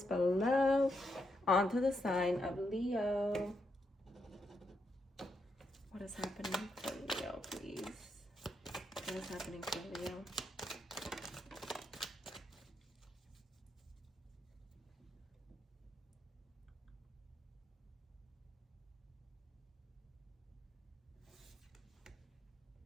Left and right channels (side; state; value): both; normal; correlation 0.81